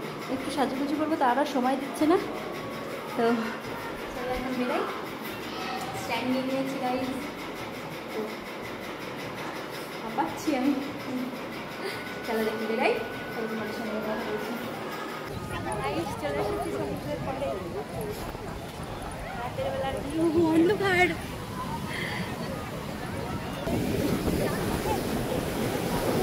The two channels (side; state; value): both; identical; correlation 1.00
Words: একটু সাজুগুজু করবো, তারা সময় দিচ্ছে না। তো চলো এখন বেরাই, স্ট্যান্ড নিয়ে নিয়েছি গাইজ। তো পাচ্ছি আমি, চলো দেখি বেরাই, তোমার সঙ্গে কথা বলছি। চলে এসেছি সমুদ্রের পরে, রাতের বেলার অন্ধকার।